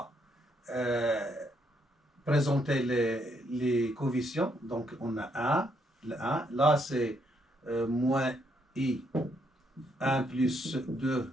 présenter les coefficients. Donc, on a 1, le 1. Là, c'est moins I, 1 plus 2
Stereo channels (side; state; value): both; normal; correlation 0.74